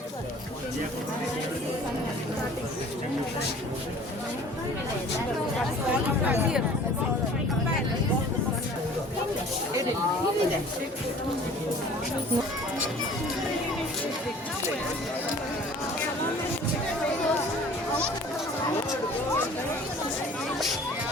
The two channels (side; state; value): both; normal; correlation 0.48